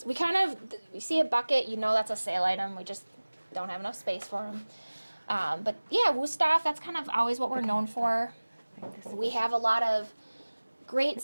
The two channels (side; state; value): both; inverted; correlation -1.00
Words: we kind of, you see a bucket, you know that's a sale item. We just don't have enough space for them. But yeah, Wusthof, that's kind of always what we're known for. We have a lot of great